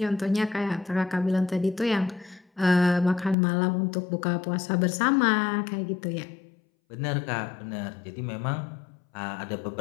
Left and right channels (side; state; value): right; drops out; at 3.4 s